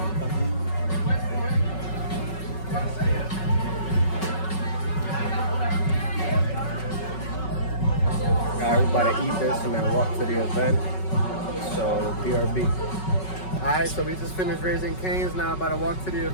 Alright, we're about to eat this and then walk to the event. So, BRB. Alright, so we just finished Raising Cane's. Now about to walk to the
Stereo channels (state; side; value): late; right; 5.3 ms